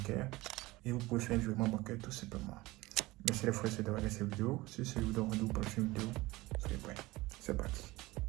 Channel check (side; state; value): left; quieter; 20.2 dB